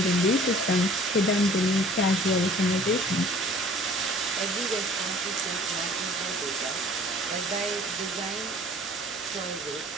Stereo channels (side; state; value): both; normal; correlation 0.51